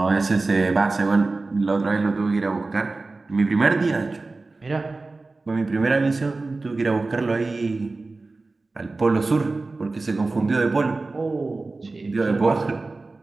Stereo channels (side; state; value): left; quieter; 3.5 dB